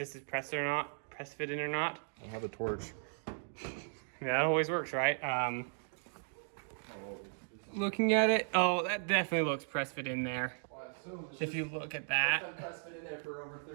is press fit in or not. I have a torch. Yeah, that always works, right? Looking at it, oh, that definitely looks press fit in there. Well, if you look at that. It's been press fit in there for over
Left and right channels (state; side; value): silent; left; digital silence